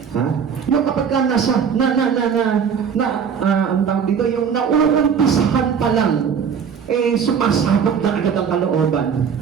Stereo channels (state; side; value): quieter; left; 6.9 dB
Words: Ha? Yung kapag nasa, ang tawag dito, yung nauumpisahan pa lang, eh, sumasabog na agad ang kalooban.